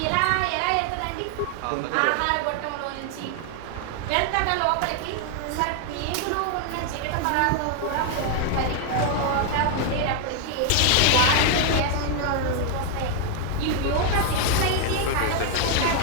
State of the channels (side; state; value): both; different; correlation 0.00